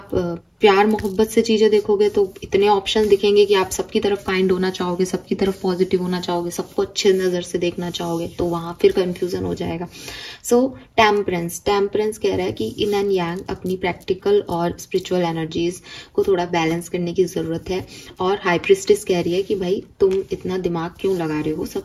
प्यार मोहब्बत से चीज़ें देखोगे तो इतने ऑप्शन दिखेंगे कि आप सबकी तरफ काइंड होना चाहोगे, सबकी तरफ पॉजिटिव होना चाहोगे, सबको अच्छे नज़र से देखना चाहोगे, तो वहाँ फिर कंफ्यूजन हो जाएगा। सो टेम्परेंस कह रहा है कि इन एंड यांग अपनी प्रैक्टिकल और स्पिरिचुअल एनर्जीज को थोड़ा बैलेंस करने की ज़रूरत है। और हाई प्रिस्टिस कह रही है कि भाई तुम इतना दिमाग क्यों लगा रहे हो,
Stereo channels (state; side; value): identical; both; correlation 1.00